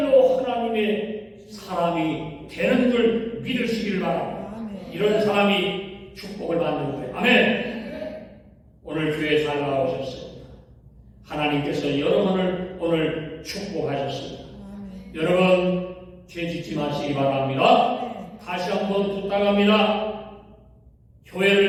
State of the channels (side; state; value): both; identical; correlation 1.00